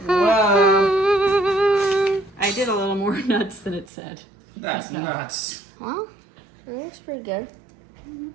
Whoa. I did a little more nuts than it said. That's nuts. Well, it looks pretty good. It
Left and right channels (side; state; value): left; drops out; at 3.9 s